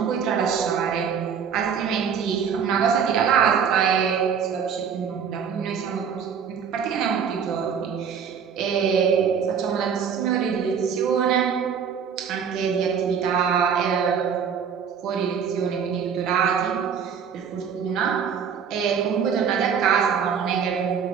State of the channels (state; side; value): quieter; left; 7.1 dB